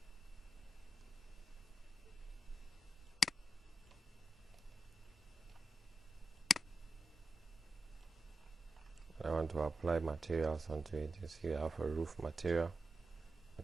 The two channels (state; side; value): normal; both; correlation 0.90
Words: I want to apply materials onto it. You see I have a roof material. I